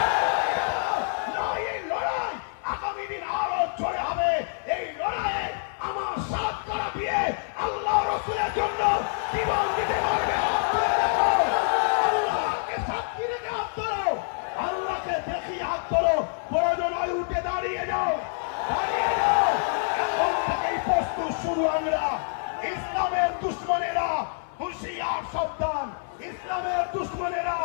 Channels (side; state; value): right; silent; digital silence